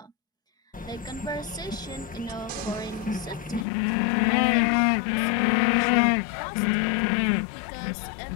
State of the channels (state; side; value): drops out; right; at 3.7 s